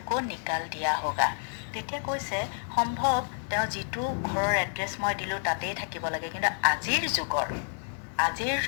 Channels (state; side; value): silent; right; 58 dB below the other